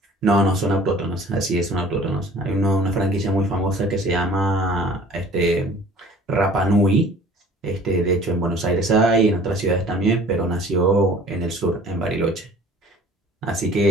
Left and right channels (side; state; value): both; normal; correlation 0.49